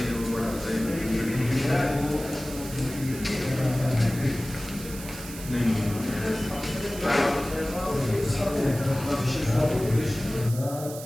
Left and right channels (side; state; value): right; noise; hiss, 13 dB below the sound